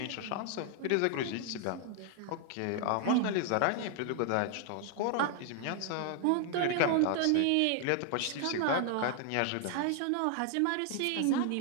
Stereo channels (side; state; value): both; different; correlation 0.00